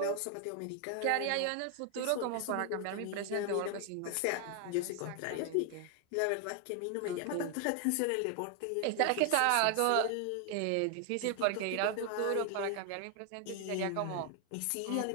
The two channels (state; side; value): different; both; correlation 0.00